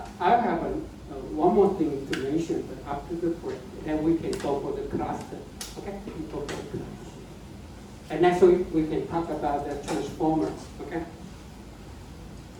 I have one more thing to mention, but after the break, then we can go for the cluster, okay? We can go for the cluster. And next week, we can talk about the transformer, okay?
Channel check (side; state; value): both; identical; correlation 1.00